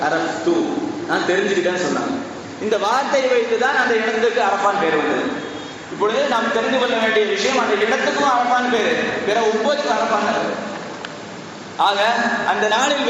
அரஃப்து, நான் தெரிஞ்சுக்கிட்டேன்னு சொன்னாங்க. இந்த வார்த்தையை வைத்து தான் அந்த இடத்துக்கு அரஃபான் பேர் வந்தது. இப்பொழுது நாம் தெரிந்து கொள்ள வேண்டிய விஷயம், அந்த இடத்துக்கும் அரஃபான் பேரு, பிற 9 அரஃபான். ஆக அந்த நாளில்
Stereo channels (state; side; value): identical; both; correlation 1.00